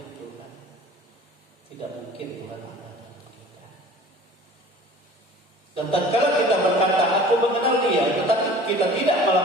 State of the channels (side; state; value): both; normal; correlation 0.45